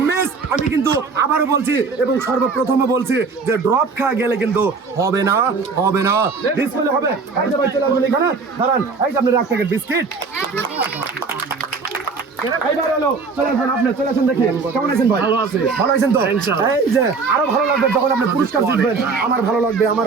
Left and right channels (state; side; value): quieter; left; 4.6 dB